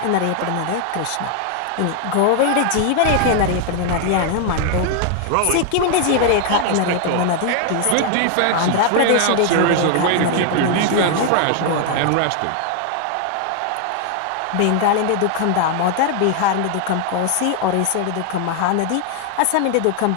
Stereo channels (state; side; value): different; both; correlation 0.00